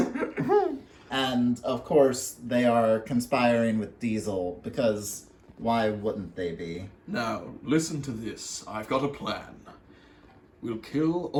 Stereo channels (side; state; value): both; identical; correlation 1.00